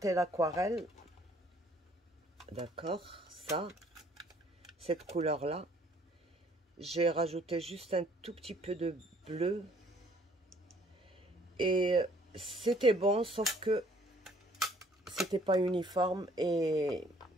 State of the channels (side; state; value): both; normal; correlation 0.60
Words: l'aquarelle. D'accord, ça, cette couleur-là. J'ai rajouté juste un tout petit peu de bleu. Et c'était bon, sauf que c'était pas uniforme et